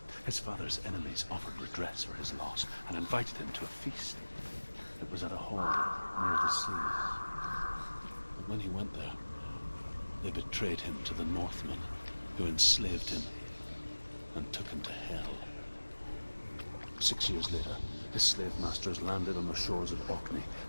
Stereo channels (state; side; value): inverted; both; correlation -1.00